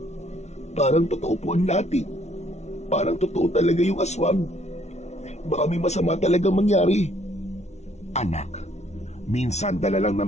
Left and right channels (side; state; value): right; late; 0.32 ms